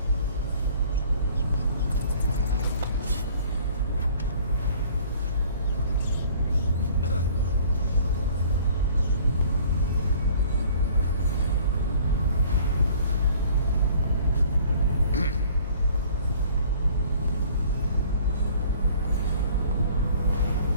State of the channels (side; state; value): both; inverted; correlation -0.52